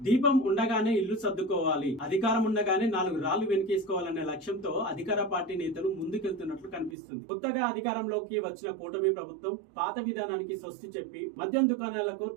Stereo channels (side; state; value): left; drops out; at 7.0 s